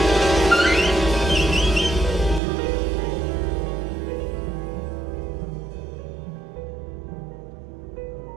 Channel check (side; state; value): left; drops out; at 2.4 s